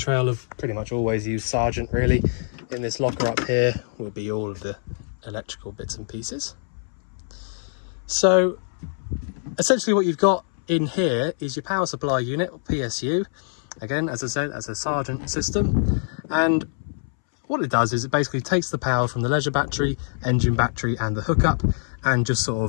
have pretty much always used Sargent really. In this locker up here will be all of the electrical bits and pieces. So essentially what you've got in here is your power supply unit, or PSU. Again, as I said, as a Sargent system. And what it does is it basically takes the power from the leisure battery, engine battery and the hookup, and just sort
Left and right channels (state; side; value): silent; right; 62 dB below the other